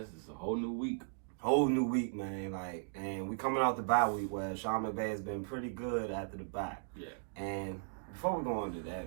It's a whole new week. Whole new week, man. And we coming off the bye week where Sean McVay has been pretty good after the bye. Yeah. And before we go into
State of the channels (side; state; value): left; silent; digital silence